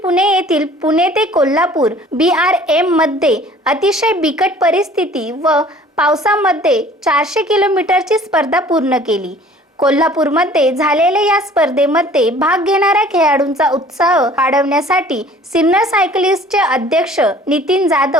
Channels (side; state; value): both; normal; correlation 0.51